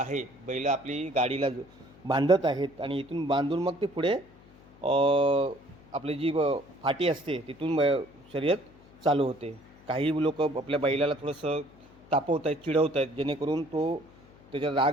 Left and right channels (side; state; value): left; noise; hum, 24 dB below the sound